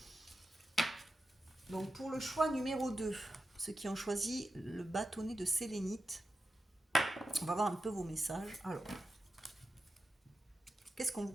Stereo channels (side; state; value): both; normal; correlation 0.91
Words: Donc pour le choix numéro 2, ceux qui ont choisi le bâtonnet de sélénite, on va voir un peu vos messages. Alors, qu'est-ce qu'on vous